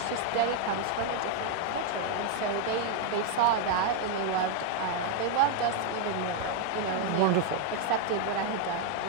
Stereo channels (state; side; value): different; both; correlation 0.00